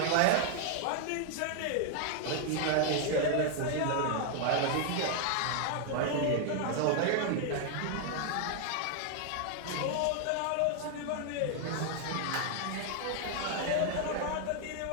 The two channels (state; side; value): different; both; correlation 0.00